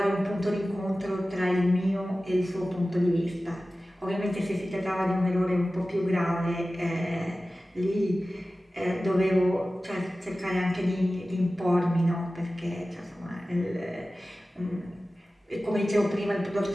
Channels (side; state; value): both; normal; correlation 0.96